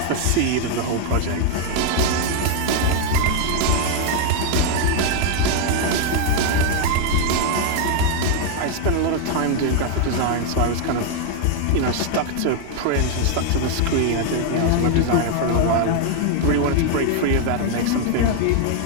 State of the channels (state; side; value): different; both; correlation 0.00